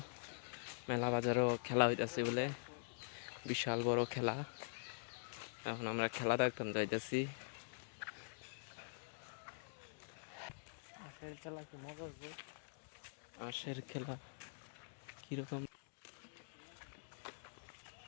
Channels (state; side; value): silent; right; digital silence